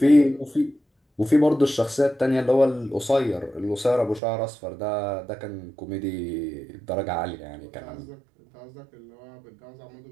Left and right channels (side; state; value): left; drops out; at 4.2 s